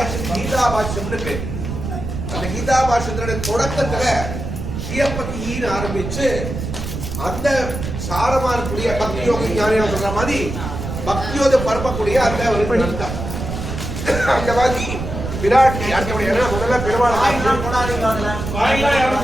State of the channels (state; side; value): noise; right; rumble, 6 dB below the sound